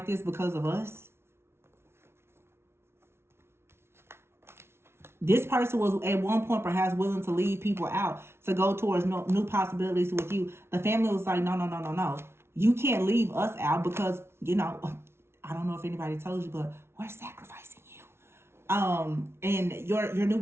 this because of us? This person was at one point perhaps willing to leave people out to go towards new possibilities with you. The family was like, no, no, no, no, no. You can't leave us out because, I don't know if anybody told you, but we're sacrificing you. And your new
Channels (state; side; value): late; left; 0.12 ms